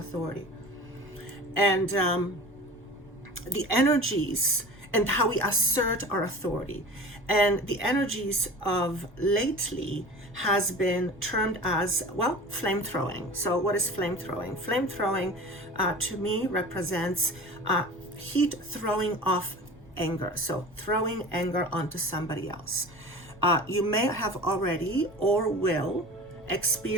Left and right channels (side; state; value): both; normal; correlation 0.37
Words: And the energies and how we assert our authority. And the energies of lately has been termed as, well, flame throwing. So what is flame throwing? Flame throwing to me represents heat throwing off anger. So throwing anger onto somebody else. You may have already or will